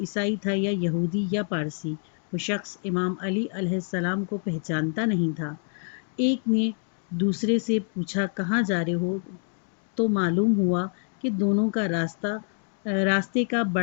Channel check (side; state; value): right; silent; 60 dB below the other